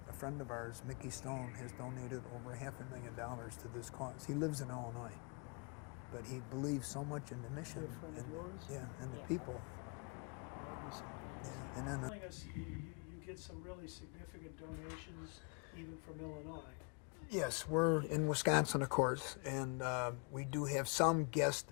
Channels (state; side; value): quieter; right; 35.3 dB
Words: friend of ours, Mickey Stone, has donated over $500,000 to this cause. He lives in Illinois, but he believes so much in the mission. Is he a friend of and, yours? Yeah, and the Yes. people. Oh, that'd be something. Yeah, and then Telling us you get some really significant donations even from Illinois. yes, we're in Wisconsin, of course, and we do have some